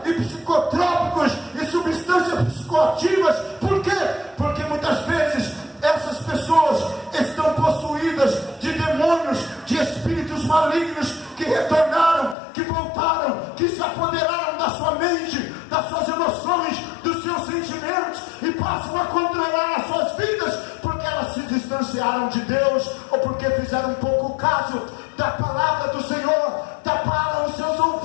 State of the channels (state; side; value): drops out; right; at 12.4 s